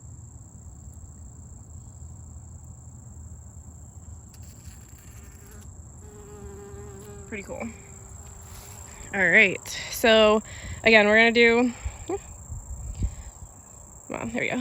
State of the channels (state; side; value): identical; both; correlation 1.00